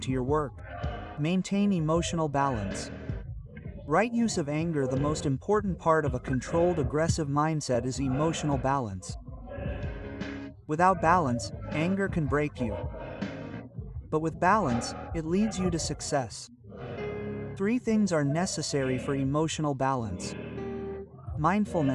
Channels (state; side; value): identical; both; correlation 1.00